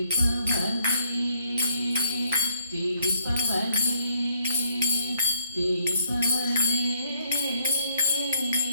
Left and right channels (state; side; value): inverted; both; correlation -0.67